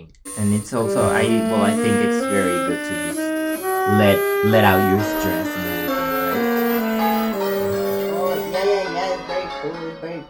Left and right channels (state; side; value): identical; both; correlation 1.00